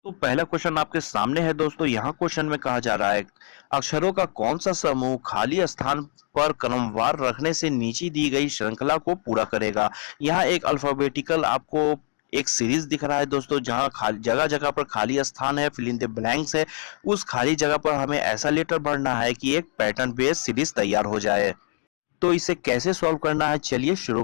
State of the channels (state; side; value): silent; right; digital silence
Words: तो पहला क्वेश्चन आपके सामने है दोस्तों। यहाँ क्वेश्चन में कहा जा रहा है, अक्षरों का कौन सा समूह खाली स्थान पर क्रमवार रखने से नीचे दी गई श्रृंखला को पूरा करेगा। यहाँ एक अल्फाबेटिकल आपको एक सीरीज दिख रहा है दोस्तों, जहाँ खाली जगह जगह पर खाली स्थान है, फिल इन द ब्लैंक्स है। उस खाली जगह पर हमें ऐसा लेटर भरना है कि एक पैटर्न बेस्ड सीरीज तैयार हो जाए। तो इसे कैसे सॉल्व करना है, चलिए शुरू